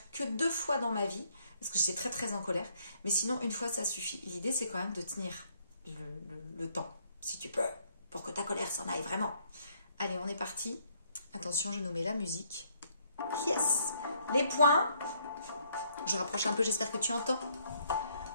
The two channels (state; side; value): inverted; both; correlation -0.68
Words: que 2 fois dans ma vie, parce que j'étais très très en colère. Mais sinon, une fois, ça suffit. L'idée, c'est quand même de tenir le temps, si tu peux, pour que ta colère s'en aille vraiment. Allez, on est parti. Attention, je nous mets la musique. Yes! Les points. Je rapproche un peu, j'espère que tu entends.